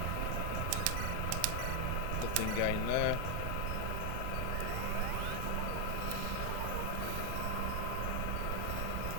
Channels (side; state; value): both; different; correlation 0.01